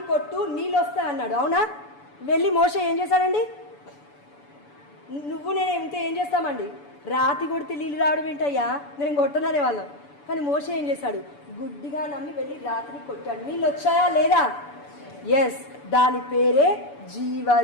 కొట్టు నీళ్ళు వస్తాయి అన్నాడు, అవునా? వెళ్ళి మోషే ఏం చేశాడండి? నువ్వు నేను ఉంటే ఏం చేస్తామండి? రాతి కొడితే నీళ్ళు రావడం ఏంటయ్యా, నేను కొట్టననే వాళ్ళం. కానీ మోషే ఏం చేశాడు? గుడ్డిగా నమ్మి వెళ్ళి రాతిని కొట్టాడు. నీళ్ళు వచ్చాయా లేదా? ఎస్, దాని పేరే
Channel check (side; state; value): right; late; 6.9 ms